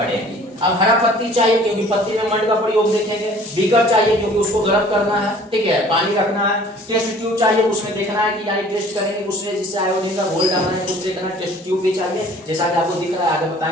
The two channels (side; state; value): both; normal; correlation 0.51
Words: अब हरा पत्ती चाहिए क्योंकि पत्ती में मंड का प्रयोग देखेंगे, बीकर चाहिए क्योंकि उसको गर्म करना है, ठीक है, पानी रखना है, टेस्ट ट्यूब चाहिए उसमें देखना है कि यानी टेस्ट करेंगे उसमें जिससे आयोडीन का घोल डालना है, कुछ देखना है, टेस्ट ट्यूब भी चाहिए जैसा कि आपको दिख रहा है, आगे